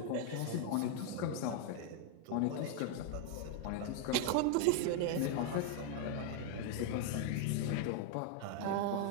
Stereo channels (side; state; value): both; different; correlation 0.01